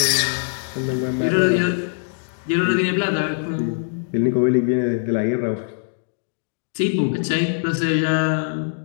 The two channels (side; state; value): right; silent; digital silence